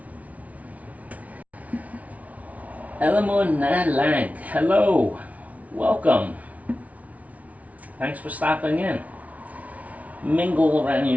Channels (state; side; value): late; left; 0.069 ms